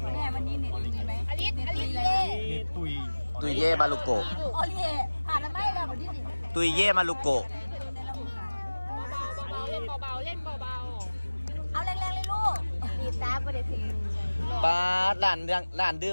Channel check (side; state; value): both; inverted; correlation -1.00